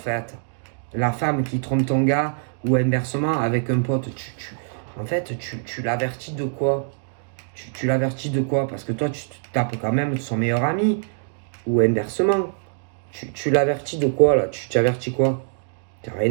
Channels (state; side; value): silent; left; digital silence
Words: La femme qui trompe ton gars ou inversement avec un pote, en fait, tu l'avertis de quoi? Tu l'avertis de quoi? Parce que toi, tu te tapes quand même de son meilleur ami ou inversement. Tu l'avertis de quoi là? Tu avertis quoi? T'as